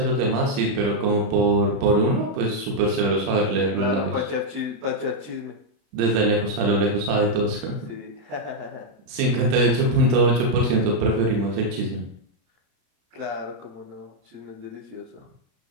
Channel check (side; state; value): left; late; 35 ms